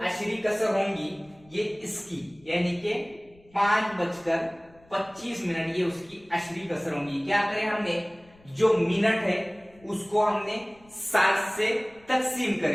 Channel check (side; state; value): left; noise; rumble, 28 dB below the sound